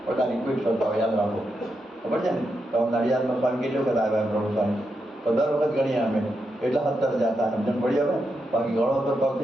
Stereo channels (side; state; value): both; normal; correlation 0.84